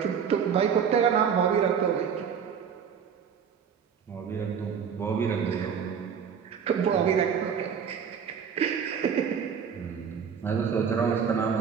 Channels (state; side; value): quieter; left; 7.2 dB